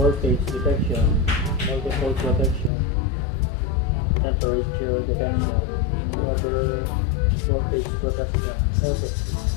detection, multiple protection, temperature detection, water voltage protection,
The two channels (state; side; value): drops out; right; at 2.7 s